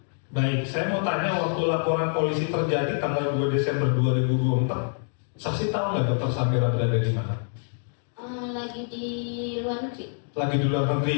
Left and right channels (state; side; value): silent; right; 61 dB below the other